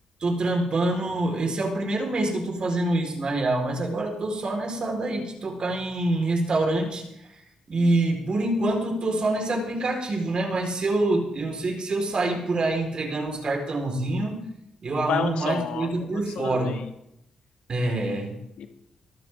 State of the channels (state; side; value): normal; both; correlation 0.80